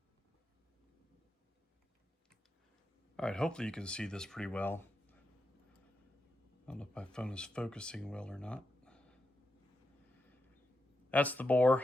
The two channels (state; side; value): normal; both; correlation 0.86